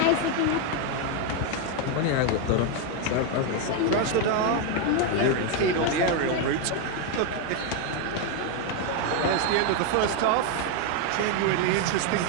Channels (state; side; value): different; both; correlation 0.02